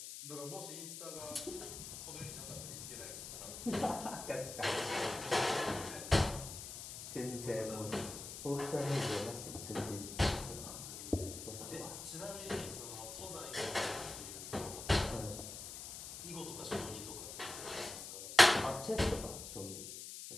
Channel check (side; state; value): left; noise; hiss, 9 dB below the sound